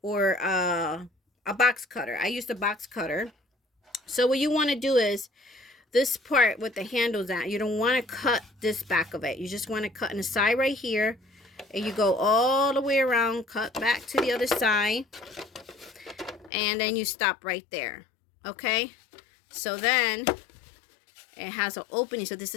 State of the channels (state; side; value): drops out; right; at 16.5 s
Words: or a box cutter. I used a box cutter. So what you want to do is this part with the handles at, you don't want to cut this back of it. You just want to cut in the side right here, and you go all the way around, cut back to the other side, and then you stop right there. Okay, so then it has an opening. So this